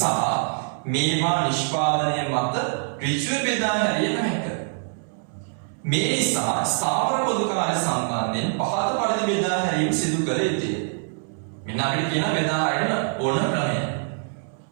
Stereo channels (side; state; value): left; silent; 62 dB below the other